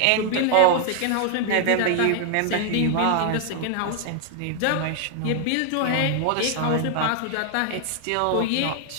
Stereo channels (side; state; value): both; different; correlation 0.00